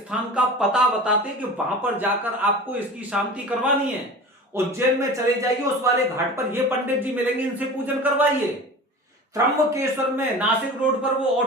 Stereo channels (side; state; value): both; normal; correlation 0.36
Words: का पता बताते कि वहां पर जाकर आपको इसकी शांति करवानी है। उज्जैन में चले जाइए, उस वाले घाट पर ये पंडित जी मिलेंगे, इनसे पूजन करवाइए। त्र्यंबकेश्वर में नासिक रोड पर वो